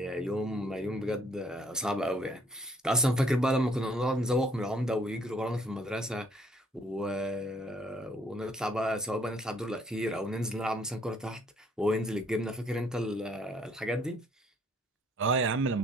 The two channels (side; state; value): both; normal; correlation 0.64